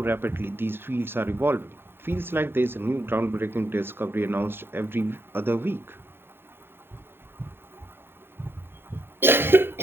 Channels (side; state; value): left; late; 0.11 ms